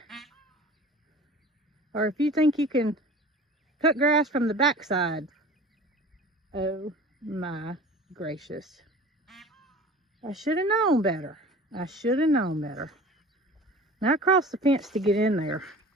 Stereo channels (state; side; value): normal; both; correlation 0.41